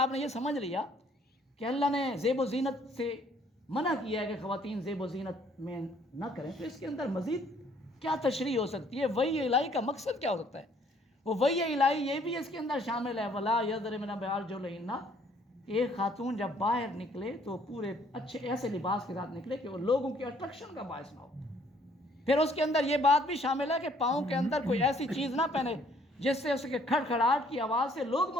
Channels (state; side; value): normal; both; correlation 0.62